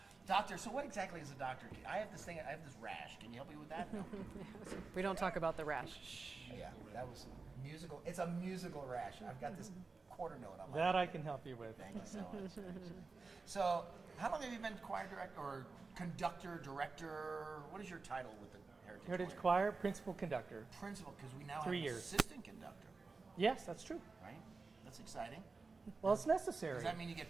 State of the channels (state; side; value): quieter; left; 4.1 dB